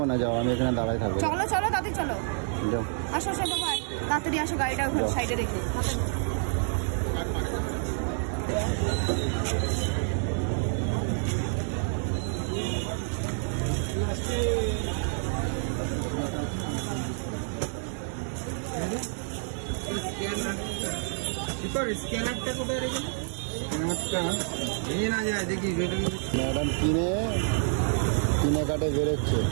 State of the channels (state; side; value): silent; left; 59 dB below the other